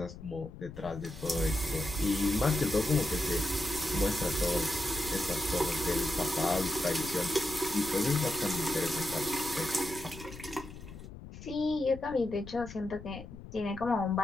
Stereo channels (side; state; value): left; noise; rumble, 14 dB below the sound